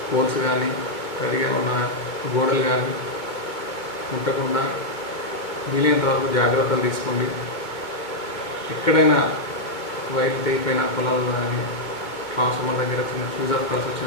పోల్స్ కానీ తడిగా ఉన్న గోడలు కానీ ముట్టకుండా వీలైనంత వరకు జాగ్రత్తలు తీసుకోండి. ఎక్కడైనా వైర్లు తెగిపోయిన పొలాల్లో కానీ ట్రాన్స్ఫార్మర్ దగ్గర చిన్న ఫ్యూజ్ ఆఫ్ కాల్స్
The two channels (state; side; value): late; right; 2.1 ms